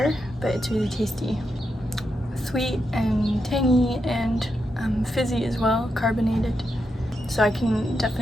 but it's really tasty. Sweet and tangy and fizzy as well, carbonated. So I can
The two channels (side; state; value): both; normal; correlation 0.84